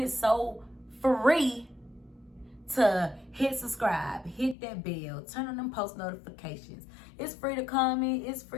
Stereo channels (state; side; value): drops out; right; at 4.5 s